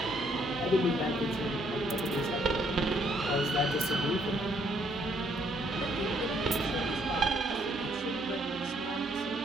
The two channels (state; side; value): normal; both; correlation 0.68